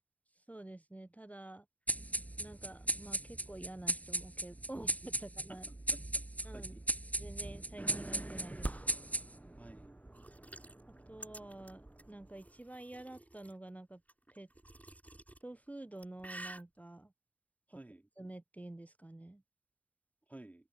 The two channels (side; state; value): right; late; 0.071 ms